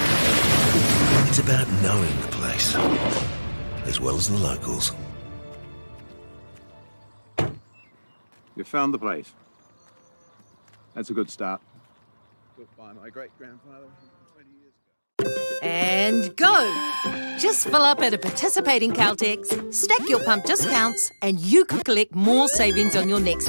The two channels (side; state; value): both; inverted; correlation -1.00